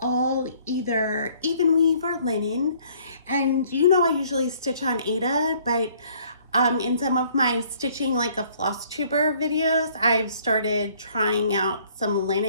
either even weave or linen. And you know I usually stitch on Aida, but in some of my stitching like a Flosstuber videos, I've started trying out some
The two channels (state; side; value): inverted; both; correlation -0.60